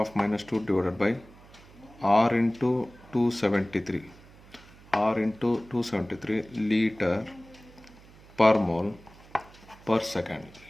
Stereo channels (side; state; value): right; noise; hum, 23 dB below the sound